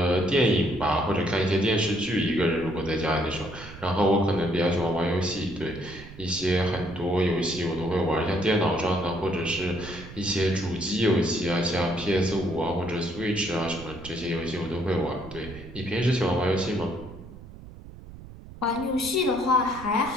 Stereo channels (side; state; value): right; noise; rumble, 16 dB below the sound